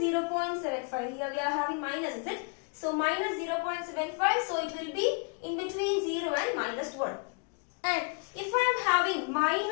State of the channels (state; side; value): quieter; right; 37.3 dB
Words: 0.75. Here we are having minus, is it? So minus 0.75. So it will be in between 0 and minus 1. And if I am having